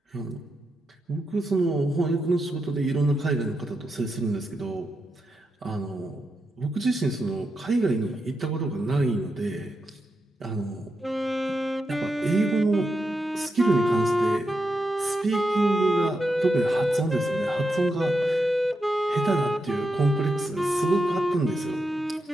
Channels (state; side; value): normal; both; correlation 0.86